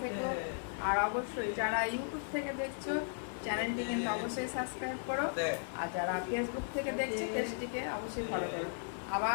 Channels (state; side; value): silent; right; 54 dB below the other